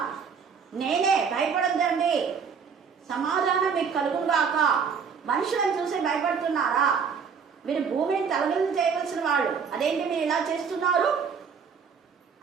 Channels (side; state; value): left; quieter; 6.3 dB